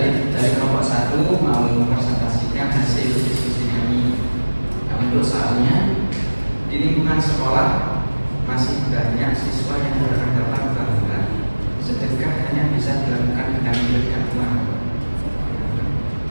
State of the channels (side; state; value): both; inverted; correlation -1.00